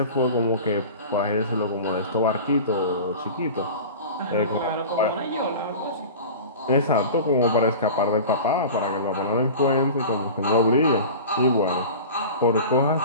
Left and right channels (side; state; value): both; inverted; correlation -0.35